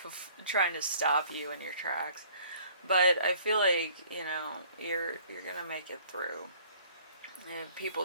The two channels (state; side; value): inverted; both; correlation -0.55